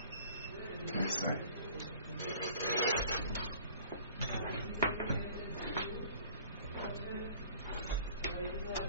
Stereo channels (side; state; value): both; inverted; correlation -0.50